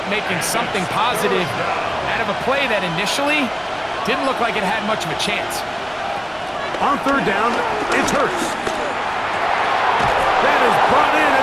making something positive out of a play that initially didn't look like it had much of a chance. On 3rd down, it's Hurts. That is brought in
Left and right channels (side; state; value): both; identical; correlation 1.00